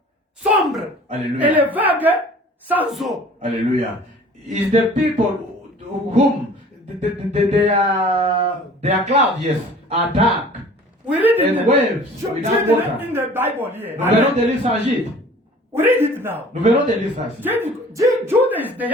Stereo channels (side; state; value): both; normal; correlation 0.47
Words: sombres. Alléluia. Et les vagues sans eau. Hallelujah. Is the people whom they are clouds, yes, are dark. We read it And waves without water. in the Bible here. Nous venons de lire ça en Gide. We read it now. Nous venons de lire ça ici. Judah is the